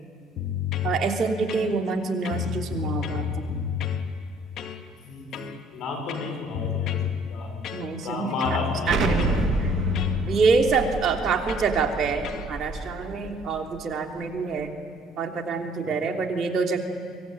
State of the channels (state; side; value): normal; both; correlation 0.59